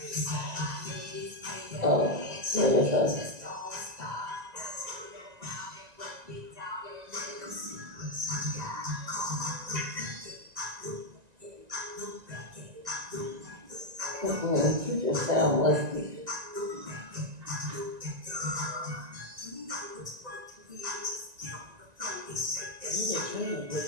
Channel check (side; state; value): left; late; 1.9 ms